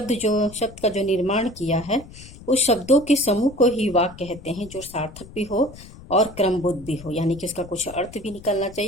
का जो निर्माण किया है, उस शब्दों के समूह को ही वाक्य कहते हैं, जो सार्थक भी हो और क्रमबद्ध भी हो, यानी कि उसका कुछ अर्थ भी निकलना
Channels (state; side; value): noise; left; rumble, 18 dB below the sound